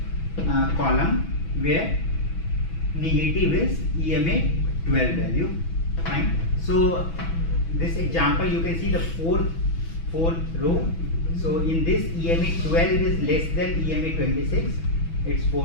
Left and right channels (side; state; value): right; late; 6.1 ms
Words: column where negative is EMA 12 value. Fine. So this example you can see the fourth row. So in this EMA 12 is less than EMA 26. It's